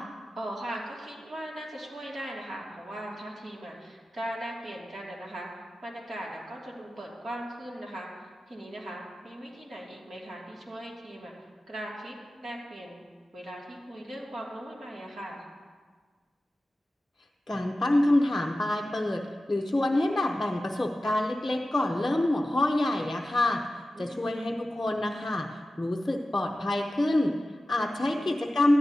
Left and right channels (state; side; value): normal; both; correlation 0.95